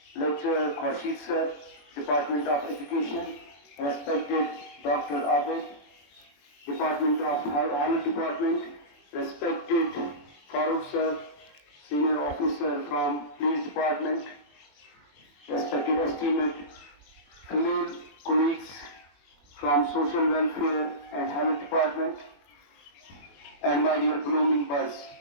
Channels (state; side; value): late; right; 21 ms